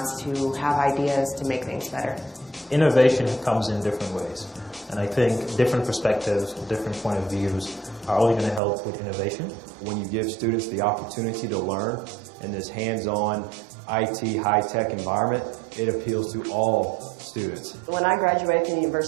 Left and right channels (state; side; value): drops out; left; at 8.6 s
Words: to have ideas to make things better. Innovation comes in different ways, and I think different perspectives, different point of views are only going to help with innovation. When you give students the opportunity to learn in this hands-on IT high-tech environment, it appeals to all students. When I graduated from the